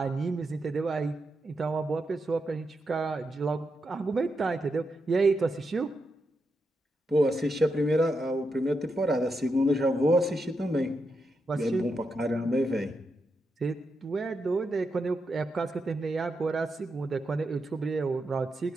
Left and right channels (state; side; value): normal; both; correlation 0.85